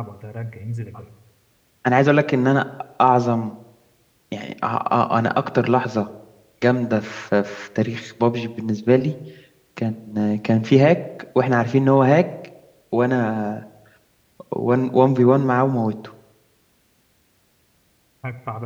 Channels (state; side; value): identical; both; correlation 1.00